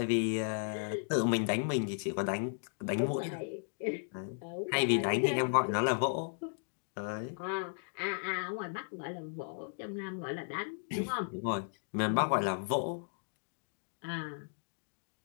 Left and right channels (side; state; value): right; silent; digital silence